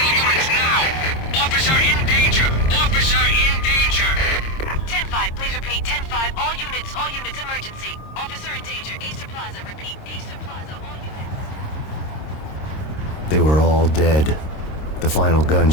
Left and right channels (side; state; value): right; late; 26 ms